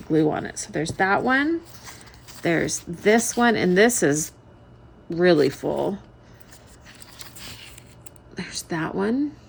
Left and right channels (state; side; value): identical; both; correlation 1.00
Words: glue on it. So there's that one. There's this one, and this is really full. There's that one,